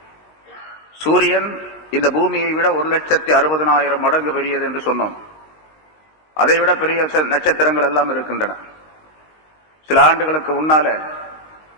சூரியன் இந்த பூமியை விட 1,60,000 மடங்கு பெரியது என்று சொன்னோம். அதைவிட பெரிய நட்சத்திரங்கள் எல்லாம் இருக்கின்றன. சில ஆண்டுகளுக்கு முன்னால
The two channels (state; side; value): late; right; 19 ms